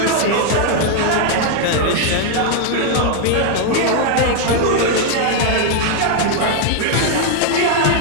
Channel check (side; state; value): both; different; correlation 0.00